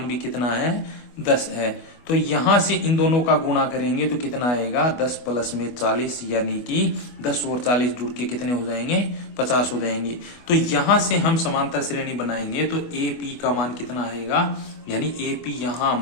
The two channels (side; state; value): right; late; 25 ms